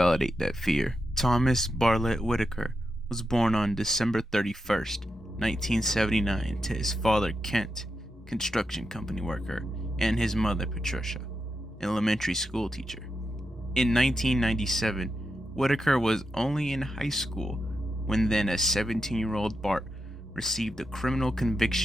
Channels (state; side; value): normal; both; correlation 0.87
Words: that fear. Thomas Bartlett Whitaker was born on December 31st, 1979, to his father Kent, construction company worker, and his mother Patricia, elementary school teacher. In 1997, Whitaker was only in high school when then a 17-year-old Bart received a criminal